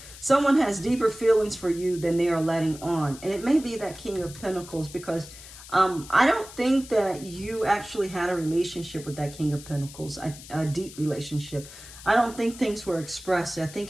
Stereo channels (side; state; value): left; noise; hiss, 16 dB below the sound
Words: Someone has deeper feelings for you than they are letting on. And it may be that King of Pentacles, because I don't think that you actually had a relationship with that King of Pentacles, a deep relationship. I don't think things were expressed. I